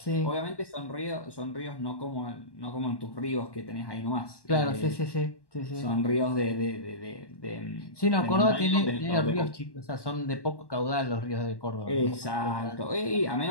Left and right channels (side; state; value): right; late; 1.1 ms